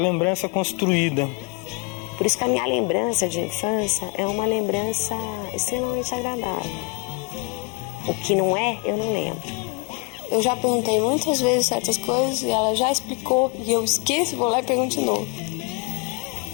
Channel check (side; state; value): right; quieter; 33.8 dB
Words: construída. Por isso que a minha lembrança de infância é uma lembrança extremamente agradável. O que não é, eu não lembro. Eu já perguntei muitas vezes certas coisas e ela já explicou e eu esqueço, vou lá e pergunto de novo.